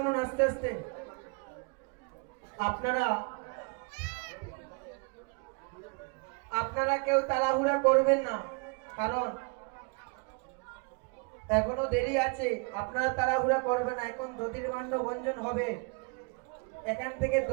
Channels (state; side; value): quieter; left; 32.8 dB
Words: আস্তে আস্তে। আপনারা আপনারা কেউ তাড়াহুড়া করবেন না, কারণ এখনো দেরি আছে। আপনারা তাড়াহুড়া করবেন না, এখন দধির ভাণ্ড ভঞ্জন হবে। এখান থেকে